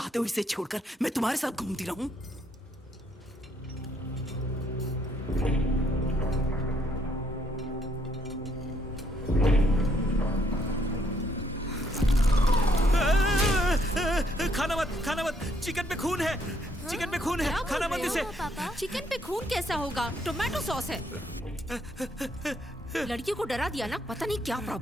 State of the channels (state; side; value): normal; both; correlation 0.70